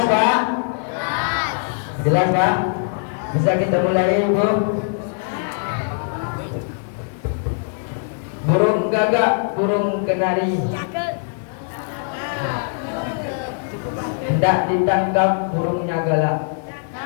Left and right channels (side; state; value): right; silent; 65 dB below the other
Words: Pak? Jelas Pak? Bisa kita mulai Ibu? Burung gagak, burung kenari hendak ditangkap burungnya galak.